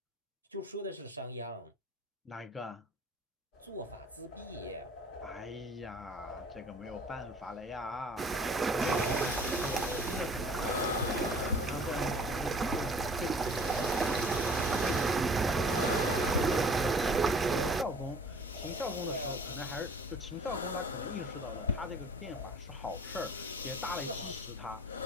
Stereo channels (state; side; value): normal; both; correlation 0.49